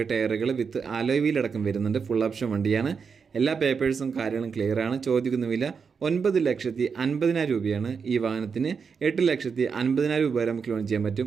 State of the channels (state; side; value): quieter; left; 5.9 dB